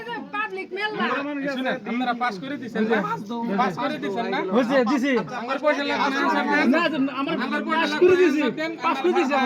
যে পাবলিক মেলা শুনে আপনারা পাস করে দিছেন না পাস করে দিছেন না হইছে দিছি আমার পয়সা লাগবে না স্যার না আমার পয়সা পাস করে দিছি পাস করে দিছি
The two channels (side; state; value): both; identical; correlation 1.00